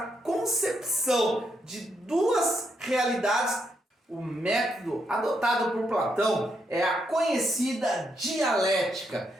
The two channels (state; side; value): normal; both; correlation 0.79